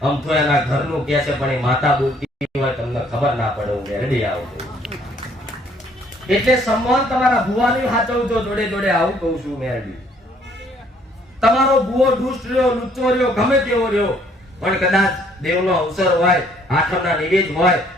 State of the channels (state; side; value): normal; both; correlation 0.63